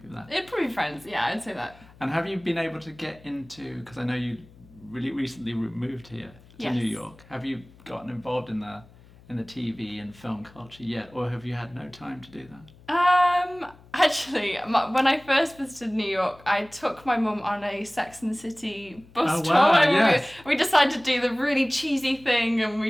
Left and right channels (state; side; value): noise; left; hum, 24 dB below the sound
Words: that? It'd probably be Friends, yeah, I'd say that. And have you been able to get into, because I know you really recently moved here to New York, have you gotten involved in the TV and film culture yet, or have you had no time to do that? Actually, when I first visited New York, I took my mum on a Sex and the City bus tour. Yes. We decided to do the really cheesy thing, and